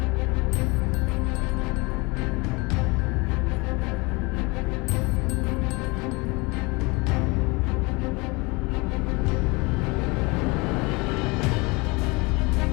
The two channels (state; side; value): quieter; right; 26.2 dB